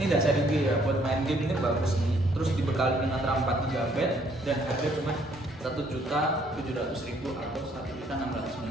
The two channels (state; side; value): normal; both; correlation 0.65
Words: enggak seri G ya, buat main game ini bagus nih. Terus dibekali dengan RAM 4 GB dan harga cuma 1.700.000 atau